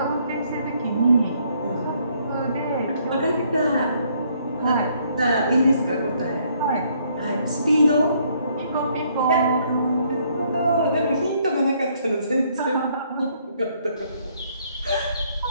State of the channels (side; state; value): both; inverted; correlation -0.68